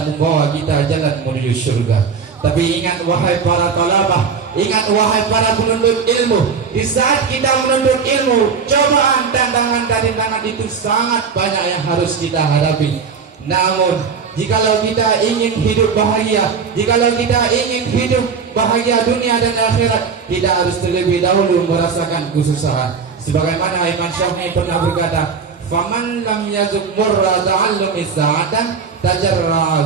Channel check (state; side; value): quieter; left; 5.7 dB